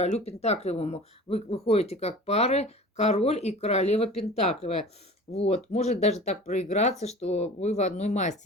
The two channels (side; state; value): both; normal; correlation 0.40